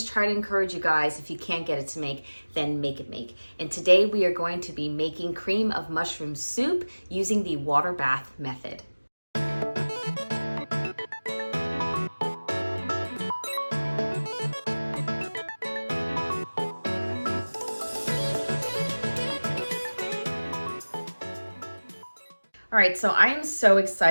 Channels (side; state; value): both; inverted; correlation -1.00